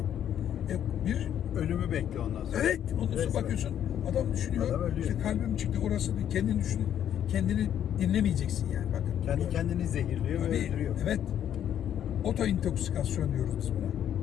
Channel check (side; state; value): right; quieter; 10.1 dB